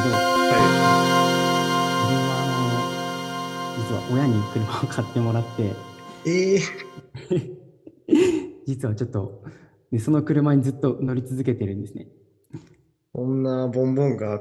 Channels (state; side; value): identical; both; correlation 1.00